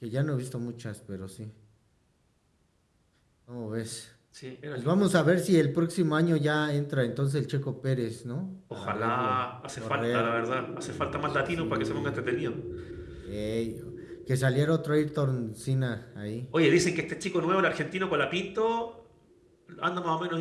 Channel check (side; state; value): both; identical; correlation 1.00